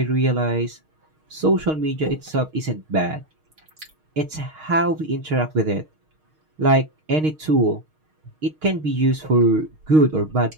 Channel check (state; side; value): late; left; 6.5 ms